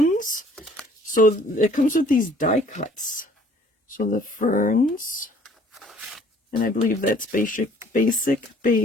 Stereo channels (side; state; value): both; normal; correlation 0.57